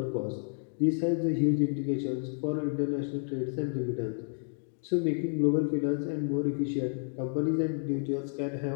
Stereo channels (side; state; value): right; silent; digital silence